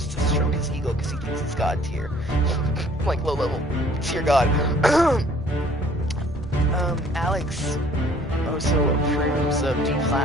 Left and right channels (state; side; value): normal; both; correlation 0.57